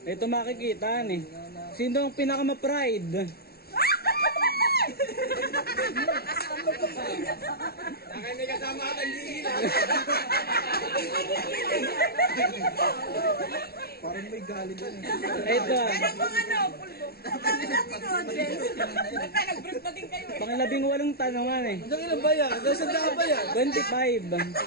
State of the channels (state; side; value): late; right; 0.45 ms